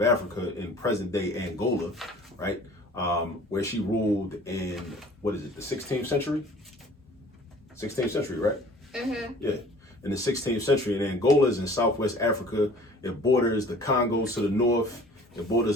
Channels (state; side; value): normal; both; correlation 0.49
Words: Africa in present-day Angola, right? Where she ruled in, the 16th century? 16th century, right? Mm-hmm. Yeah, in the 16th century. And Angola is in southwest Africa. It borders the Congo to the north. It